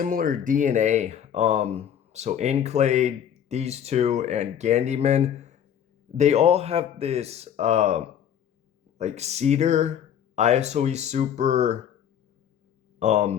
DNA. So Enclade, these two, and Gandyman, they all have this like cedar, ISOE super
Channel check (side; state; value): right; quieter; 9.2 dB